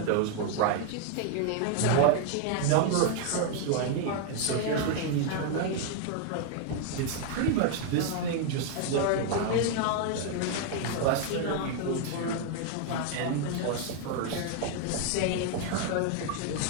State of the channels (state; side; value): different; both; correlation 0.00